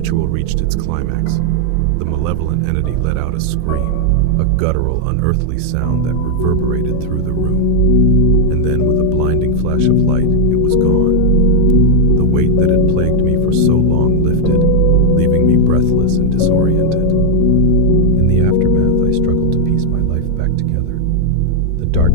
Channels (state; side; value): different; both; correlation 0.00